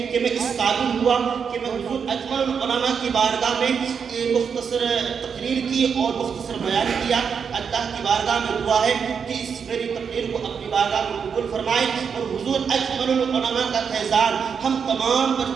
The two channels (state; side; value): quieter; left; 6.5 dB